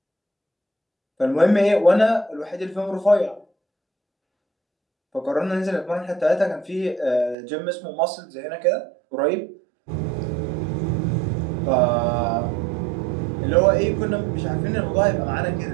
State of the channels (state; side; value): drops out; left; at 7.4 s